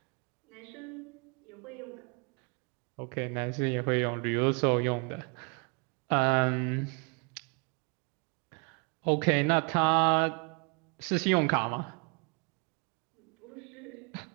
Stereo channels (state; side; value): quieter; left; 35.0 dB